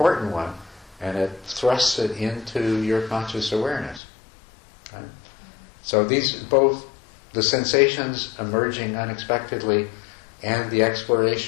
one, and it thrusts it into your conscious awareness. Right? So these, both the sensations emerging unexpectedly and the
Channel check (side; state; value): right; drops out; at 4.0 s